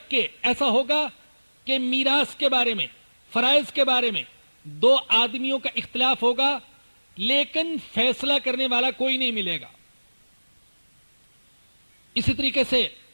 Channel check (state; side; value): inverted; both; correlation -1.00